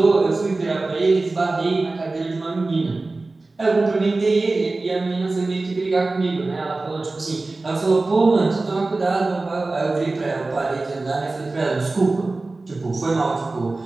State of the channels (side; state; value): left; quieter; 3.3 dB